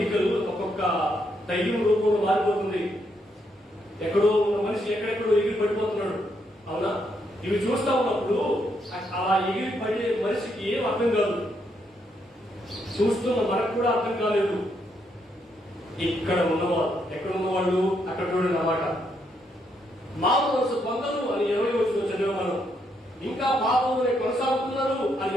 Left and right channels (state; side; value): normal; both; correlation 0.76